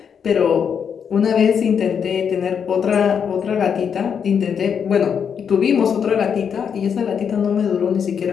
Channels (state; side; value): quieter; right; 7.2 dB